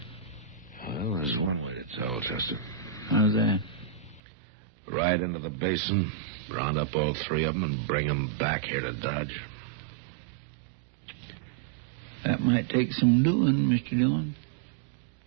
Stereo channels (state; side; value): drops out; left; at 4.2 s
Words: Well, there's one way to tell, Chester. How's that? Right into the basin, round up all three of them, and bring them back here to Dodge. That might take some doing, Mr. Dillon.